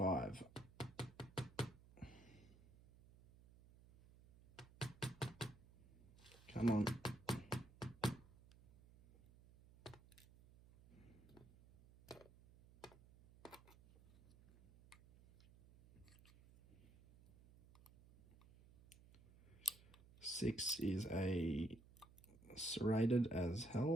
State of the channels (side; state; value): right; noise; hum, 23 dB below the sound